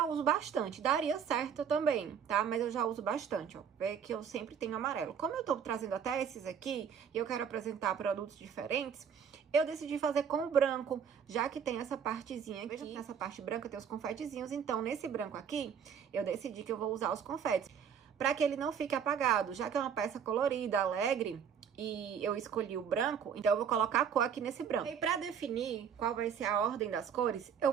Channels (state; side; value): quieter; left; 7.5 dB